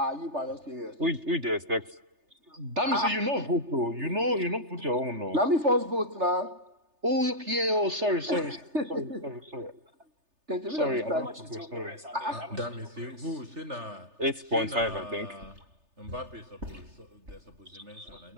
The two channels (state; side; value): late; left; 3.3 ms